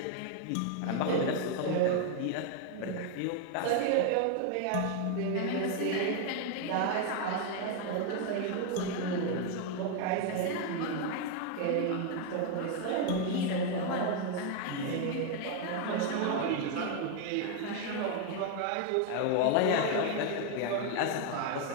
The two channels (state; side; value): different; both; correlation 0.01